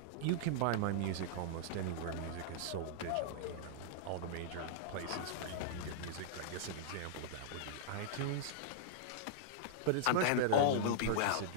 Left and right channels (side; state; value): both; different; correlation -0.02